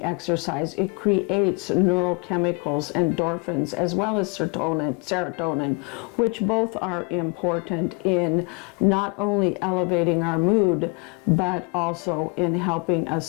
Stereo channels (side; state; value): right; quieter; 32.7 dB